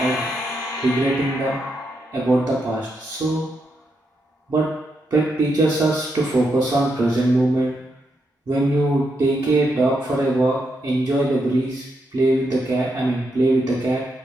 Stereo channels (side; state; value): both; normal; correlation 0.81